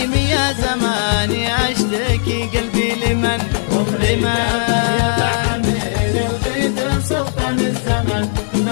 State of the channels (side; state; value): right; silent; digital silence